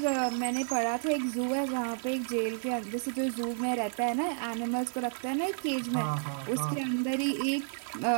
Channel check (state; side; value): silent; left; 57 dB below the other